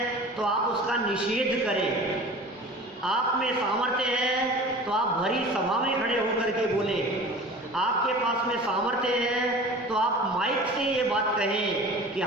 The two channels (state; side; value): normal; both; correlation 0.39